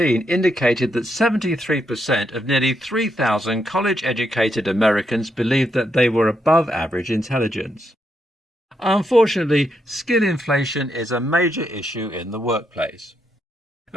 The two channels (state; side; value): normal; both; correlation 0.80